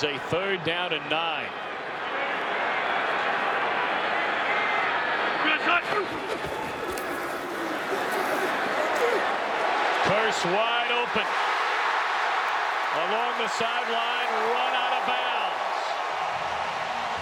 a 3rd down and 9. Curse wide open along the sideline, run out of bounds.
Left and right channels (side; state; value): both; identical; correlation 1.00